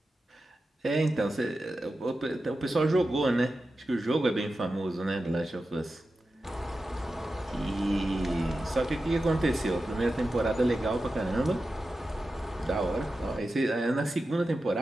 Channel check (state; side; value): normal; both; correlation 0.92